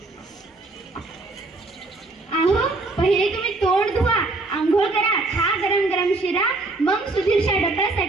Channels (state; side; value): quieter; left; 3.2 dB